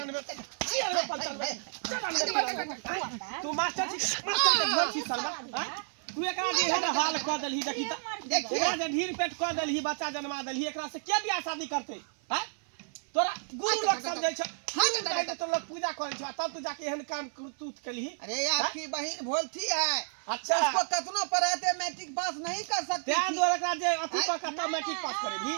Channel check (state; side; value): silent; left; 57 dB below the other